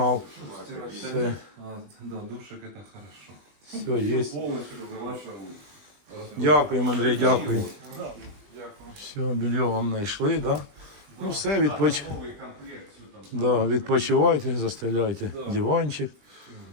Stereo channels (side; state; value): left; late; 20 ms